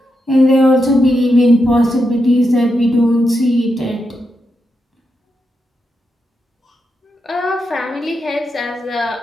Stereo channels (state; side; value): normal; both; correlation 0.85